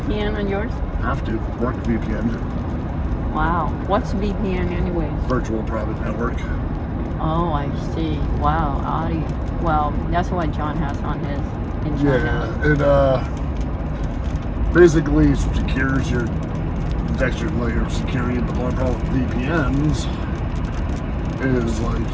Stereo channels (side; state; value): both; identical; correlation 1.00